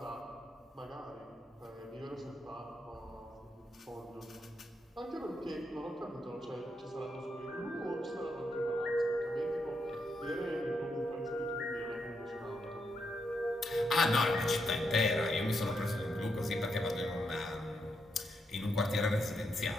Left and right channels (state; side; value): normal; both; correlation 0.81